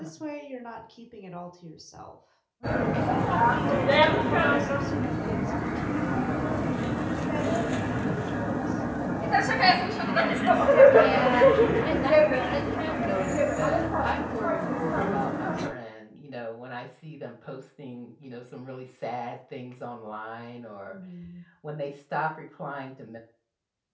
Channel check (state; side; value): identical; both; correlation 1.00